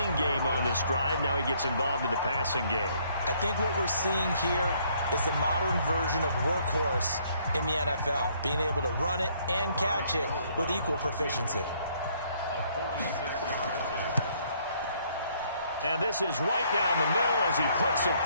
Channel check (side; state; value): both; inverted; correlation -0.66